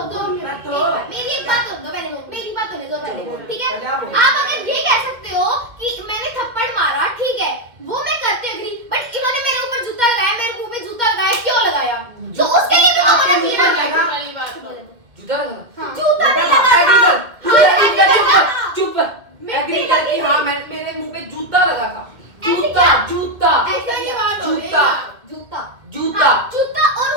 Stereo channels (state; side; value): late; left; 2.0 ms